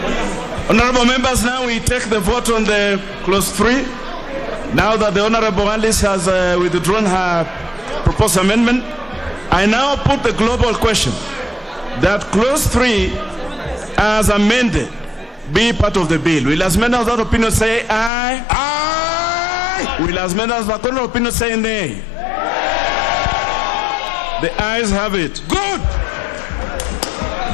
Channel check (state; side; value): drops out; right; at 18.1 s